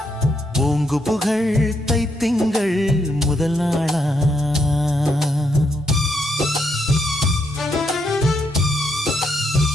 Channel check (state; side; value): normal; both; correlation 0.77